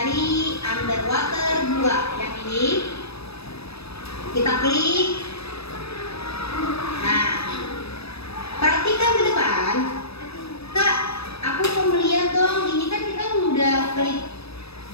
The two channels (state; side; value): late; right; 0.78 ms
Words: underwater 2 yang ini. Kita klik. Nah, perhatikan ke depan. Kak, aku mau melihat dong. Ini kan kita udah klik